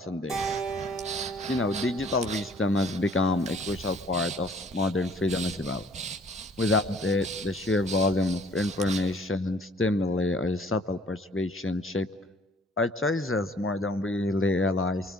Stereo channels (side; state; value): both; normal; correlation 0.57